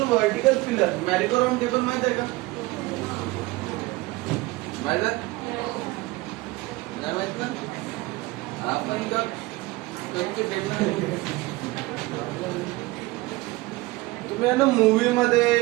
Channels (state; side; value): quieter; left; 20.9 dB